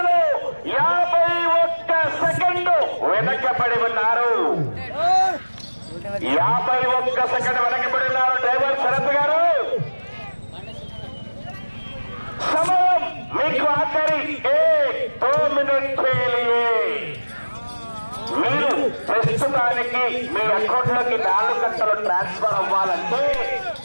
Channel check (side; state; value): both; inverted; correlation -1.00